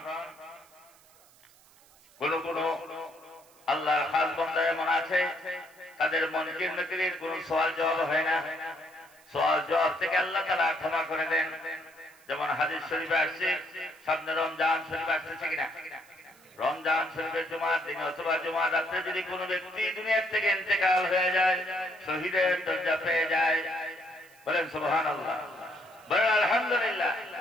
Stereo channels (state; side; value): noise; right; hiss, 27 dB below the sound